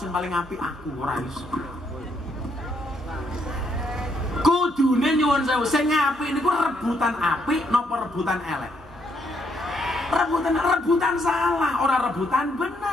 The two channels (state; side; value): normal; both; correlation 0.73